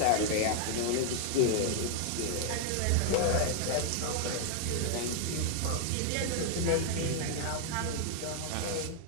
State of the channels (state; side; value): different; both; correlation 0.00